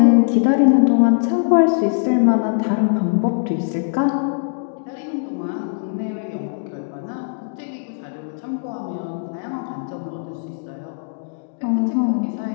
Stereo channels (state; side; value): silent; right; digital silence